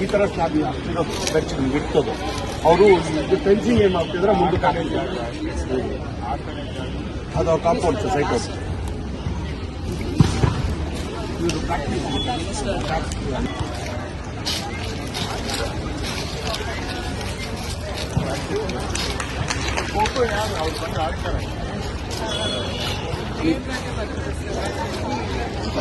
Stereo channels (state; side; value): identical; both; correlation 1.00